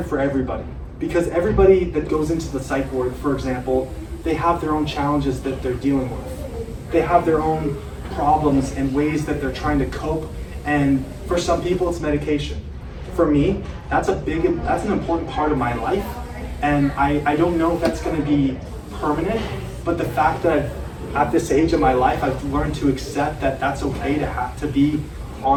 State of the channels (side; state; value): both; identical; correlation 1.00